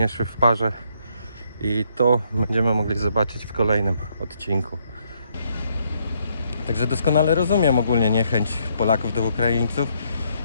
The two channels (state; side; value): inverted; both; correlation -0.72